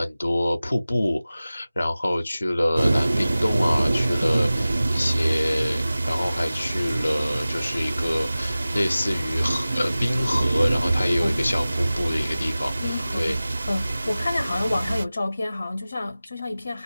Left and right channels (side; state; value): both; inverted; correlation -0.96